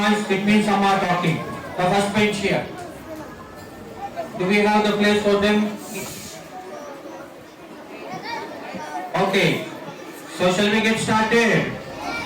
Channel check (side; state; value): both; identical; correlation 1.00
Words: It means some are talking. The first bench here. Do we have the place for them? Okay. So shall we get started?